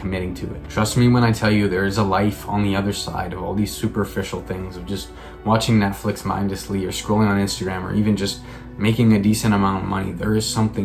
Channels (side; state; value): both; identical; correlation 1.00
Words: to it. Trust me when I tell you, there is a life on the other side of all these superficial things of just watching Netflix mindlessly or scrolling on Instagram or even just making a decent amount of money. There is